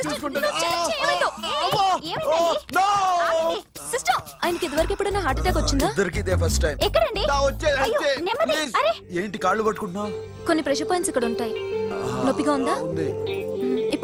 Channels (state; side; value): identical; both; correlation 1.00